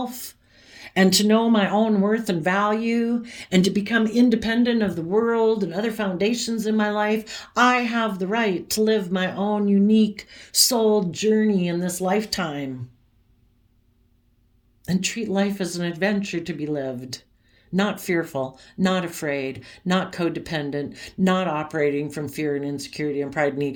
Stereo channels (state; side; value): identical; both; correlation 1.00